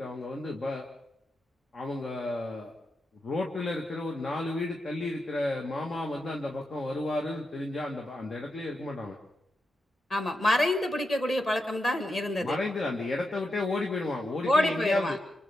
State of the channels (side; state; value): both; normal; correlation 0.86